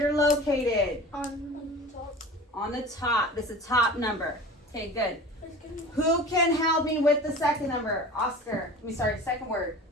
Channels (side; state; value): both; normal; correlation 0.38